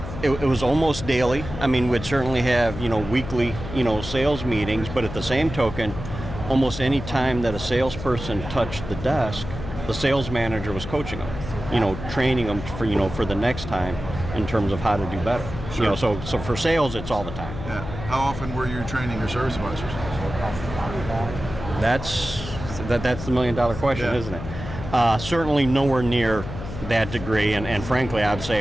almost daily. I mean, we'd certainly have weekly sales meetings, but at the same token, almost any time that a salesperson touched the desk, the sales manager was coaching them, training them for the next time in terms of how to do better. Sure. So for sales, it's all the time. Yeah. How often were you training your service advisors? That's the $1 million question, isn't it? Certainly nowhere near that degree, and frankly, I'd say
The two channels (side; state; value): left; noise; hum, 9 dB below the sound